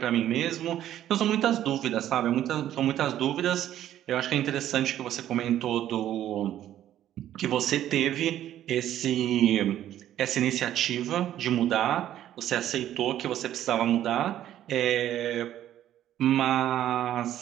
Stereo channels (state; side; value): quieter; left; 11.9 dB